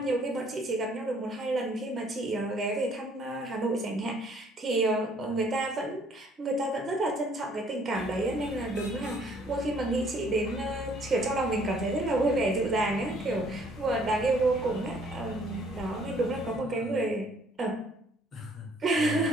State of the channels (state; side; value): normal; both; correlation 0.61